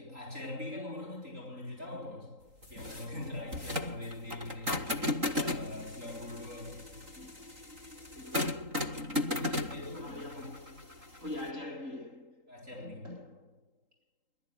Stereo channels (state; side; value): late; left; 3.8 ms